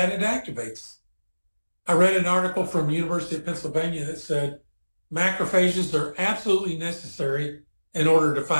it activates. I read an article from University of Pennsylvania that said macrophages are absolutely necessary in order to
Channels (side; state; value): both; inverted; correlation -1.00